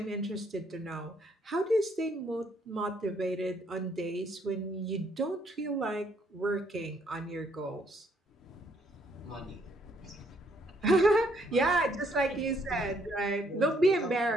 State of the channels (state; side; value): normal; both; correlation 0.69